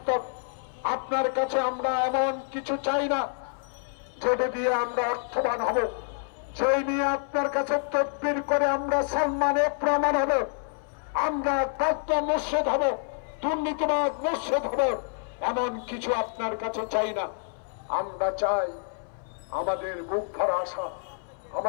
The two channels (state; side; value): silent; right; 60 dB below the other